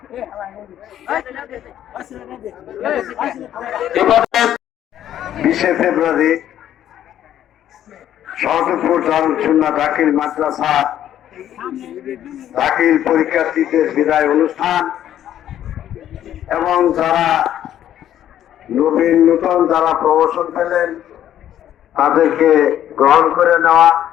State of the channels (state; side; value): quieter; right; 11.2 dB